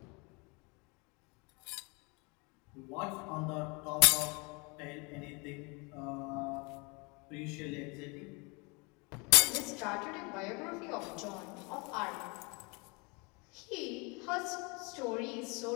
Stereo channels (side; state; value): right; quieter; 29.6 dB